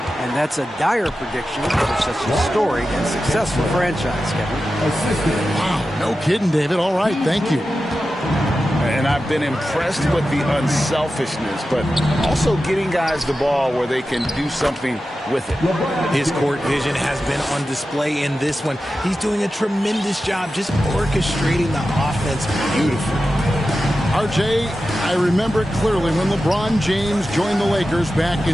And that's a dire prediction for such a storied and successful franchise, Kevin. Wow, no kidding, David. All right, thank you. And I've been impressed with the unselfishness, but also getting guys the ball where they can do something with it. His court vision has been on display in this one. He's doing a tremendous job just orchestrating the offense beautifully. RJ, I remember clearly when LeBron James joined the Lakers back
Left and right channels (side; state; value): both; normal; correlation 0.92